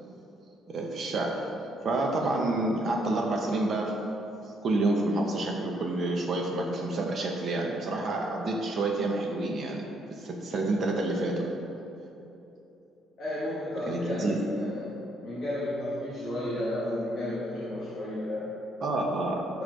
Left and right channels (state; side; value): normal; both; correlation 0.71